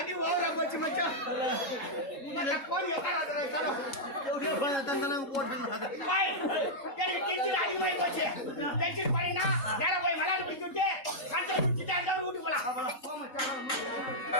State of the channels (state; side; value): late; right; 3.7 ms